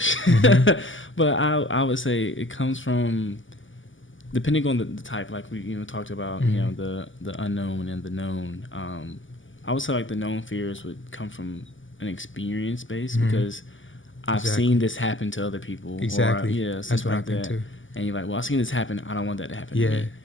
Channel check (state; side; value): late; right; 0.57 ms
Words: But I would say it comes from, depending on the type, like we talked about, the unknown and the known. I would say the known fears would come from an experience base because I've seen this happen to other people. Exactly. Or something like that. Too. And you're like, well, I've seen this happen. I don't want that to happen to me.